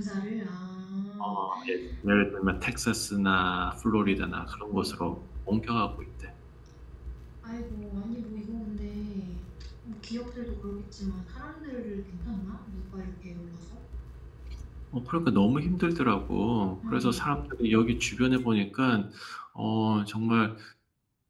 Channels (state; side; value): identical; both; correlation 1.00